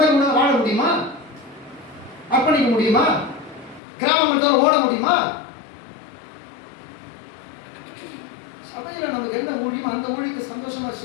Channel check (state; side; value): drops out; right; at 3.8 s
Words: உணவு வாழ முடியுமா? அர்ப்பணிக்க முடியுமா? கிராமத்தில் ஓட முடியுமா? சபையில நமக்கு என்ன ஊழியம், அந்த ஊழியத்தை சந்தோஷமா